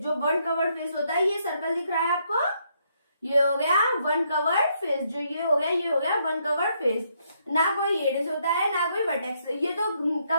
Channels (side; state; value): both; inverted; correlation -0.74